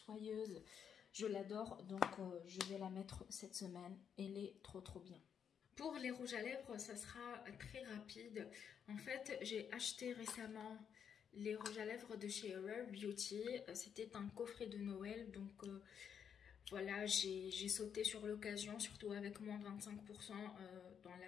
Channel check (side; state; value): right; quieter; 7.8 dB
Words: Je l'adore, donc je vais la mettre cette semaine. Elle est trop bien. Pour les rouges à lèvres, ça sera très rapide. En fait, j'ai acheté récemment les rouges à lèvres de chez Rare Beauty. C'était un coffret de Noël, donc... Voilà, j'ai sauté sur l'occasion, surtout avec moins 25% dans